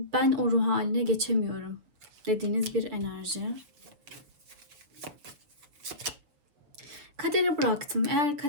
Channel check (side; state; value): left; late; 6.9 ms